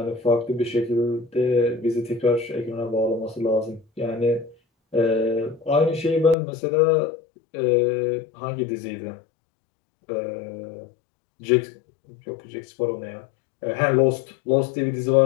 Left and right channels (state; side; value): drops out; right; at 6.4 s